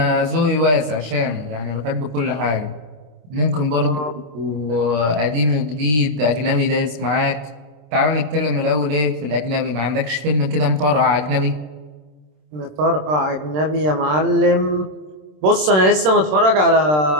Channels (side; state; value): left; late; 27 ms